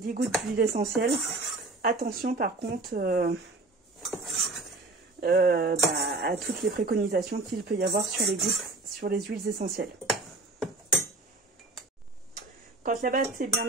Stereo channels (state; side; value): quieter; left; 3.1 dB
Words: gouttes d'huile essentielle. Attention par contre à toutes les préconisations qu'il peut y avoir sur les huiles essentielles. Quand la pâte est bien